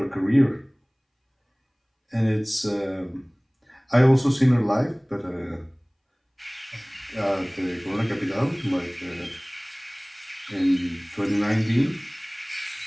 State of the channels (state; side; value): identical; both; correlation 1.00